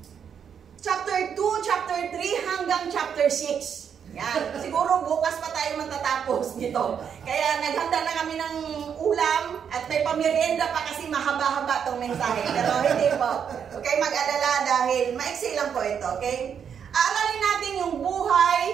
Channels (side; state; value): left; quieter; 7.7 dB